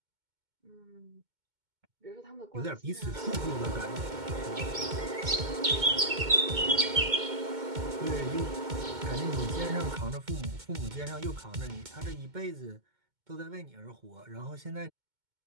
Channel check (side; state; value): left; late; 2.2 ms